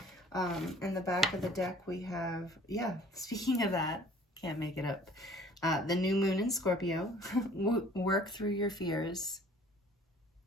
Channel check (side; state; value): both; normal; correlation 0.52